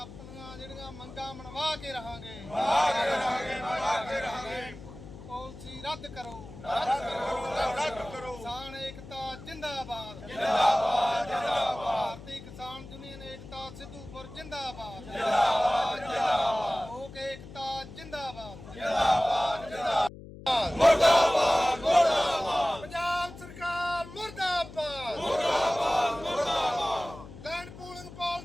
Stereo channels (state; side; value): noise; left; hum, 15 dB below the sound